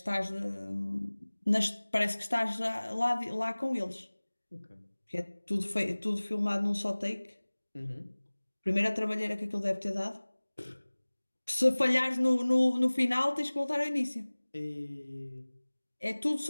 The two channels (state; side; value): inverted; both; correlation -1.00